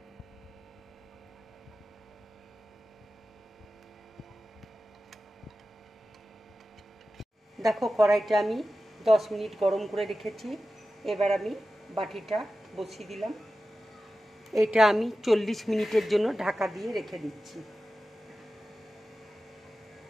দেখো কড়াইটা আমি 10 মিনিট গরম করে রেখেছি। এবার আমি বাটিটা বসিয়ে দিলাম। এটা আমি 40 মিনিটের জন্য ঢাকা দিয়ে রেখে দিচ্ছি।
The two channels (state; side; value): normal; both; correlation 0.94